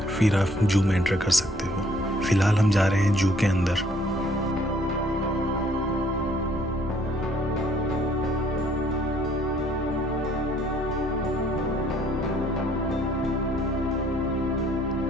फिर आप जू में एंटर कर सकते हो। फ़िलहाल हम जा रहे हैं जू के अंदर।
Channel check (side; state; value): both; normal; correlation 0.62